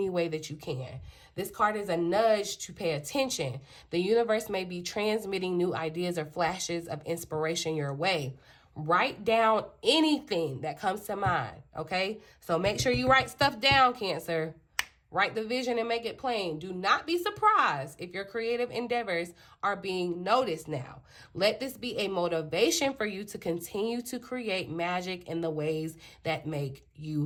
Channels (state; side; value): identical; both; correlation 1.00